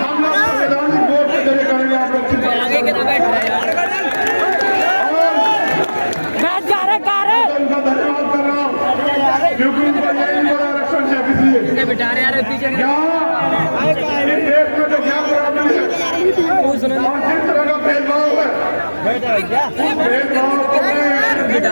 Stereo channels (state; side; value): inverted; both; correlation -1.00